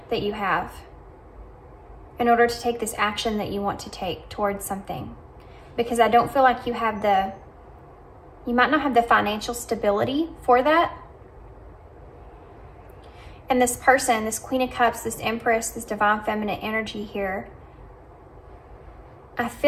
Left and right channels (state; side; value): identical; both; correlation 1.00